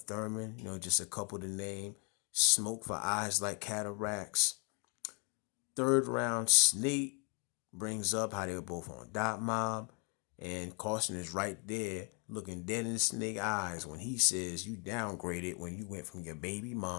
just a couple to name. Smoke for eyes like cataracts. Third round, Snake brings up how they were both on Dot Mob. And Caution is right there looking dead in Snake eyes when he says you downgraded when you went from your baby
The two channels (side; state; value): right; quieter; 35.8 dB